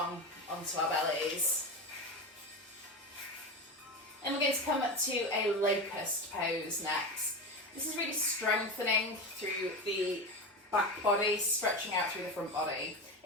onto our bellies. And we're going to come up to a locust pose next. This is really strengthening through the back body, stretching out through the front body.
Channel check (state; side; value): normal; both; correlation 0.22